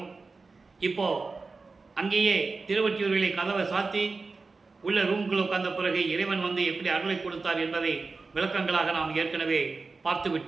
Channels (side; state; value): left; quieter; 4.1 dB